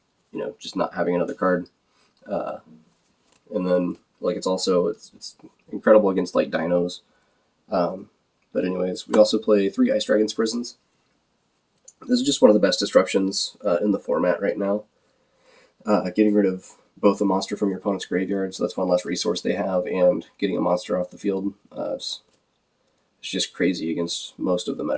you know, just not having another card. And then, like, it's incredible against, like, dinos. But anyways, we also play 3 Ice Dragon's Prisons. This is just one of the best disruptions in the format right now. Getting rid of both a monster from your opponent's graveyard, so that's one less resource they have, and getting a monster off the field. It's just crazy against most of the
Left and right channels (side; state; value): both; identical; correlation 1.00